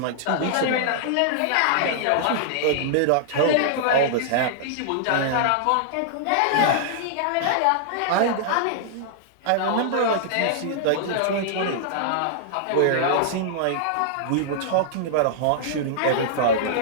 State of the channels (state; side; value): different; both; correlation -0.01